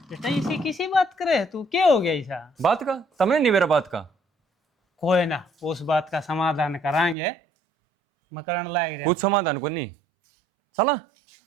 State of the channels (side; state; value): left; drops out; at 7.2 s